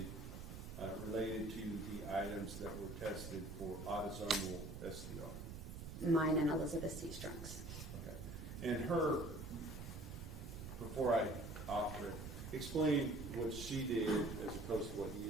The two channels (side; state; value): right; noise; rumble, 9 dB below the sound